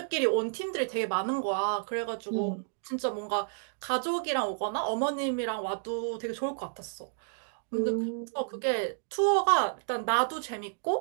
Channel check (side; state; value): left; silent; digital silence